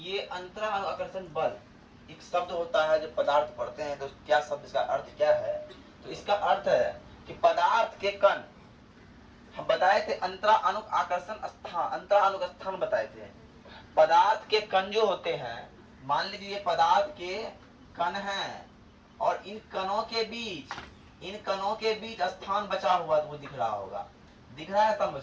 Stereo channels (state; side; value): identical; both; correlation 1.00